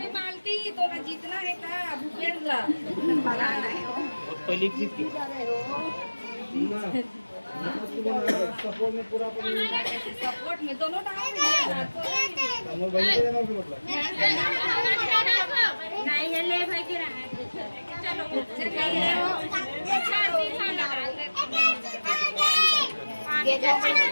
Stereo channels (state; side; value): inverted; both; correlation -1.00